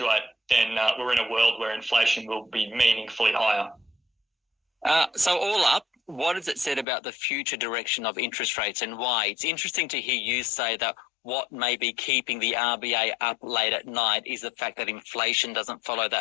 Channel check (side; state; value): right; drops out; at 6.9 s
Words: then we're in a world where inflation will be meaningfully higher. So all up, what has it said about the future direction of interest rates and why? It's interesting to hear you say that what may be keeping the RBA up late at night is the fact that inflation doesn't follow